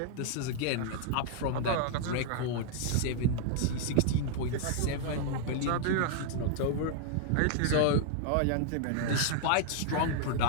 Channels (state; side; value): different; both; correlation -0.01